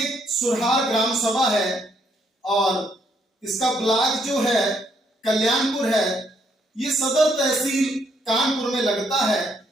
सुरहार ग्राम सभा है और इसका ब्लॉक जो है कल्याणपुर है। ये सदर तहसील कानपुर में लगता है,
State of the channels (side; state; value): both; normal; correlation 0.71